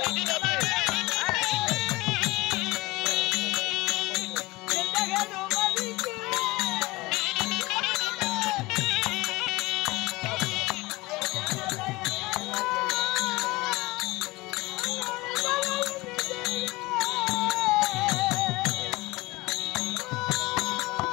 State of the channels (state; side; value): quieter; right; 21.5 dB